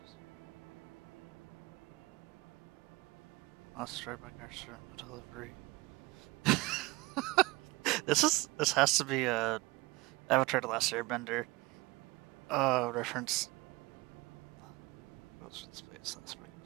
Lost straight by Garcia delivery. This has to be a Avatar: The Last Airbender reference. Goes to space.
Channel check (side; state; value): left; quieter; 22.8 dB